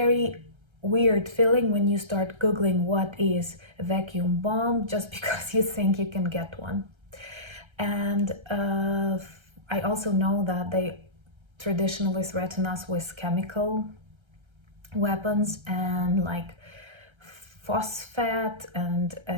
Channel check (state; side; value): late; left; 1.3 ms